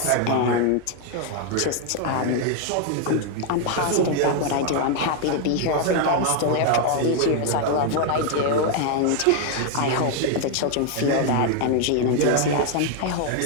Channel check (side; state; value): both; different; correlation 0.00